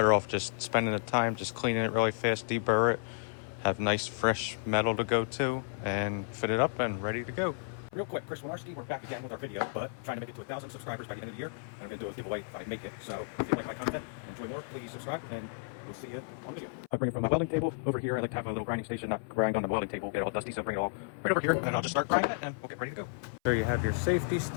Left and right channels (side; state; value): right; silent; 56 dB below the other